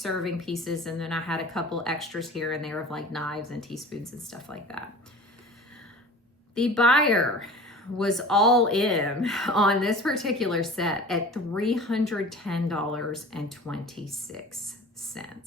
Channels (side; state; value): both; normal; correlation 0.40